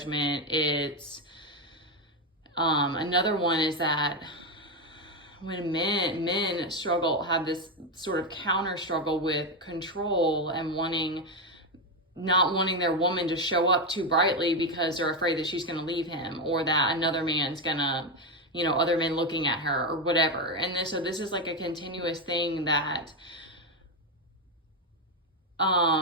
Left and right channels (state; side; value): normal; both; correlation 0.08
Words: It's another one is that when men struggle, have this sort of counter struggle with control and not wanting their woman to show up too brightly because they're afraid that she's going to leave him, or that another man's gonna, other men looking at her or whatever. And so this is like a continuous thing that